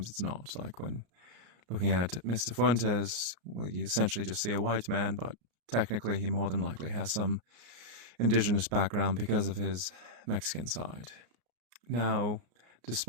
it's not. Like when looking at Mr. Fuentes, well, you essentially just see a white man, but technically he more than likely has some indigenous background because of his Mexican side. Now,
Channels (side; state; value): left; late; 34 ms